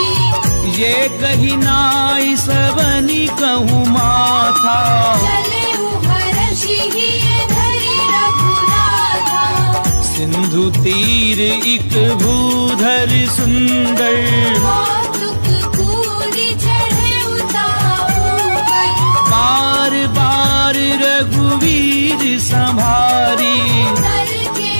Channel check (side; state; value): both; inverted; correlation -1.00